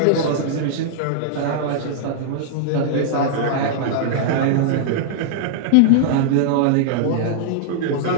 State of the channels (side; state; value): both; different; correlation -0.02